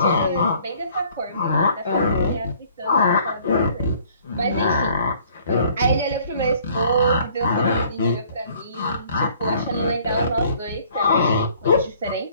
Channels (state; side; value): inverted; both; correlation -0.58